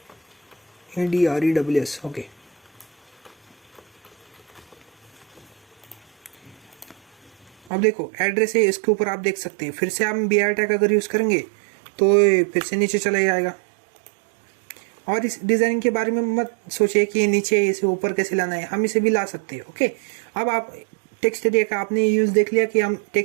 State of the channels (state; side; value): drops out; left; at 7.7 s